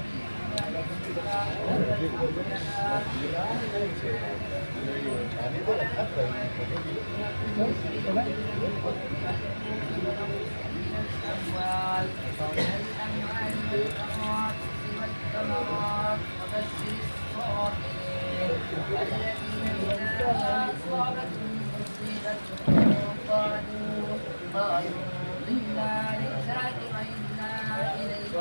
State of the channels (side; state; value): both; inverted; correlation -1.00